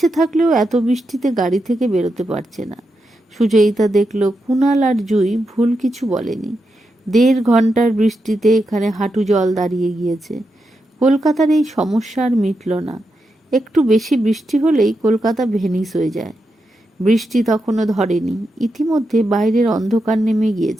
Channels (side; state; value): both; normal; correlation 0.86